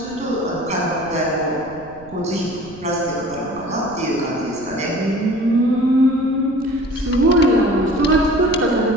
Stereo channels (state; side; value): noise; right; rumble, 21 dB below the sound